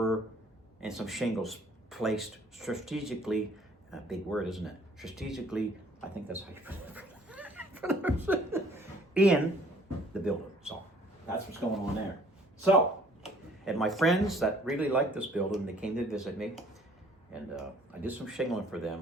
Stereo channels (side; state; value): both; normal; correlation 0.57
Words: and some shingles placed strategically, a big word, isn't it? Strategically, I think that's how you pronounce it, in the building. So that's what's going on there. So, and my friends that really like this building, they came to visit me. And I did some shingling for